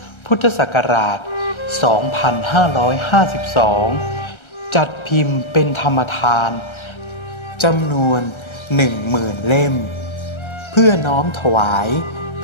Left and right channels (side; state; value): right; late; 1.3 ms